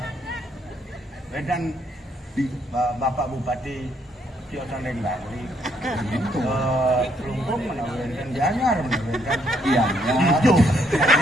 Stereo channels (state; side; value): normal; both; correlation 0.71